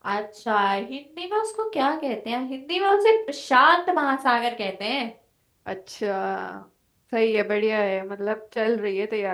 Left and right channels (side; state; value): both; identical; correlation 1.00